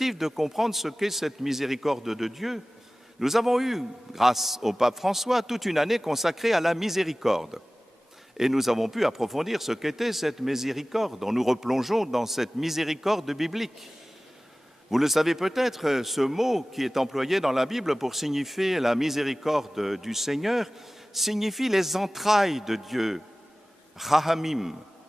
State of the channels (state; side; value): normal; both; correlation 0.97